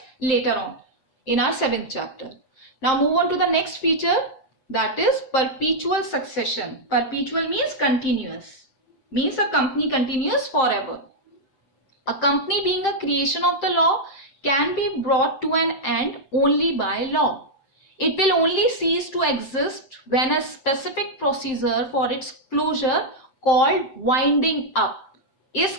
later on in our 7th chapter. Now move on to the next feature, that is perpetual succession. Perpetual means continuous. Means a company continues forever. A company being a creation of the law can be brought to an end only by law. It will only cease to exist when a specific procedure for its closure called winding up is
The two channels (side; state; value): right; late; 7.6 ms